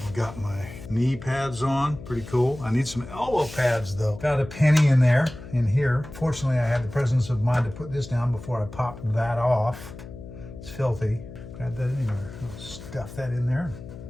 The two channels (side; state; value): left; noise; hum, 14 dB below the sound